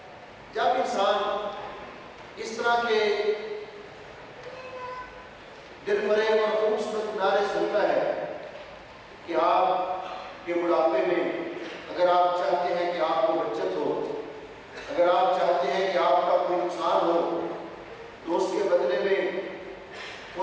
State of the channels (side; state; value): both; identical; correlation 1.00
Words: جب انسان اس طرح کے دل فریب اور خوبصورت نعرے سنتا ہے کہ آپ کے بڑھاپے میں اگر آپ چاہتے ہیں کہ آپ کو بچت ہو، اگر آپ چاہتے ہیں کہ آپ کا کوئی نقصان ہو، تو اس کے بدلے میں